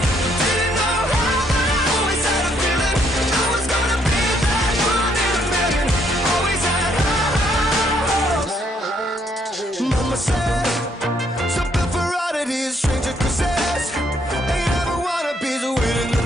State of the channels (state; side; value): normal; both; correlation 0.70